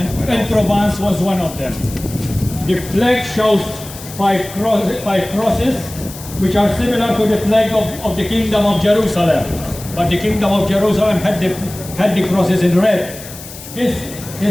Provence was one of them. The flag shows five crosses, which are similar to the flag of the Kingdom of Jerusalem, but the Kingdom of Jerusalem had the crosses in red. This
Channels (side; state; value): left; noise; hiss, 14 dB below the sound